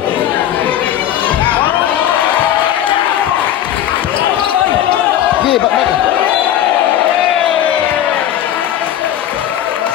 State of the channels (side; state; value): right; quieter; 11.4 dB